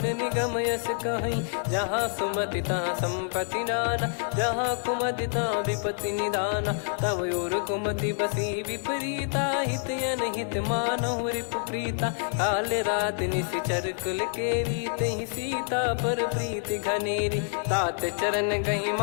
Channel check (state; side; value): silent; right; 60 dB below the other